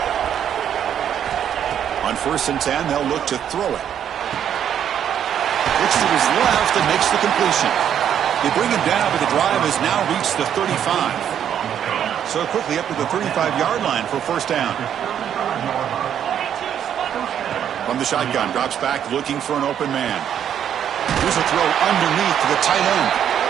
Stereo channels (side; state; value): left; quieter; 9.4 dB